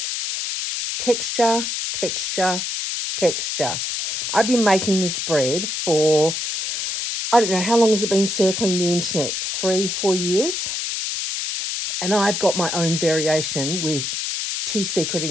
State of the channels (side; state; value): left; noise; hiss, 2 dB below the sound